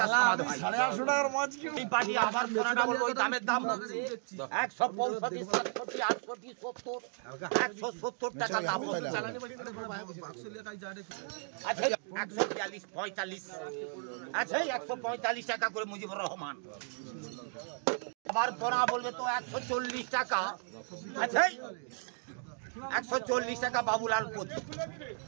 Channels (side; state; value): left; silent; 55 dB below the other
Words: সমাদ হয়। এই পার্টি আবার পড়াটা বলবো ওই দামের দাম 165, 67, 68, 70, 170 টাকা দাম হচ্ছে। আচ্ছা 142, 45, আচ্ছা 145 টাকা করে মুজিবুর রহমান। আবার পড়া বলবে তো 140 টাকা, আচ্ছা 140 টাকা বাবুলাল পতি।